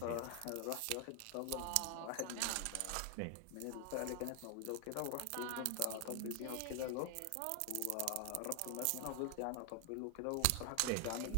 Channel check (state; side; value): different; both; correlation 0.00